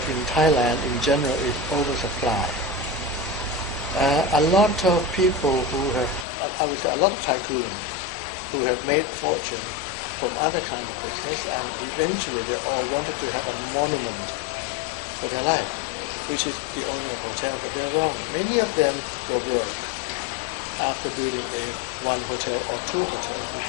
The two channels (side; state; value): right; drops out; at 6.2 s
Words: in Thailand in general is oversupply. A lot of people who have, I would say a lot of tycoons who have made fortune from other kind of business, and eventually they all wanted to have a monument for their life, which is the owner of hotel, but they're wrong. Many of them go broke after building one hotel or two hotels,